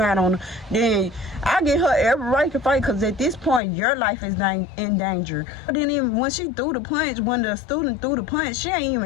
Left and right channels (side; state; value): right; drops out; at 3.6 s